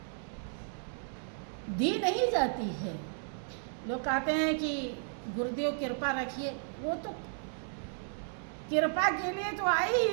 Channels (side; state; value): left; silent; digital silence